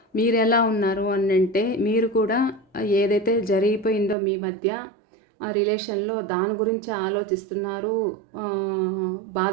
మీరు ఎలా ఉన్నారు అని అంటే, మీరు కూడా ఏదైతే జరిగిపోయిందో మీ మధ్య ఆ రిలేషన్లో దాని గురించి ఆలోచిస్తున్నారు,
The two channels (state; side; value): drops out; left; at 4.2 s